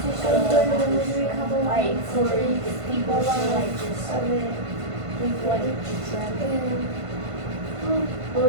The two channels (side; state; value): left; late; 1.5 ms